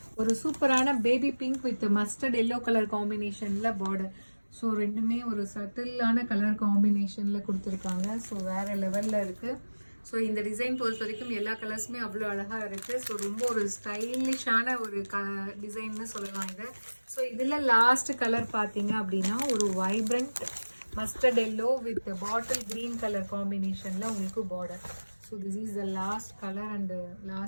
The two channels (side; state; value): both; inverted; correlation -1.00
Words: ஒரு சூப்பரான baby pink with mustard yellow colour காம்பினேஷனில் பார்டர். ஸோ ரெண்டுமே ஒரு சட்டிலான கலர் காம்பினேஷனில் கொடுத்துருக்காங்க. ஸோ வேறு லெவலில் இருக்குது. ஸோ இந்த டிசைன் பொறுத்த வரைக்கும் எல்லா கலர்ஸுமே அவ்வளோ அழகாக இருக்குது. ஸோ ரொம்ப ஒரு ஸ்டைலிஷான ஒரு டிசைன்னு சொல்லலாம் இதை. ஸோ இதில் லாஸ்ட் கலர் பார்த்தீங்க அப்படின்னா ஒரு vibrant mustard yellow with bottle green colour காம்பினேஷனில் உங்களுக்கு border. So this is the last colour and